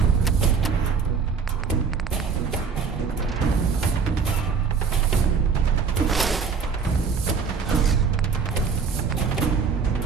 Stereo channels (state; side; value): quieter; left; 5.7 dB